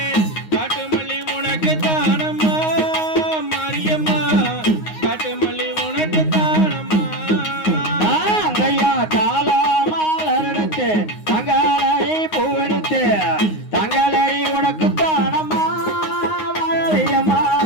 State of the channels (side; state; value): right; late; 9.6 ms